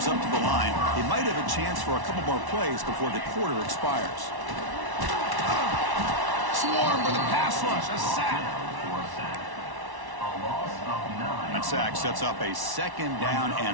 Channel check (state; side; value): late; left; 1.1 ms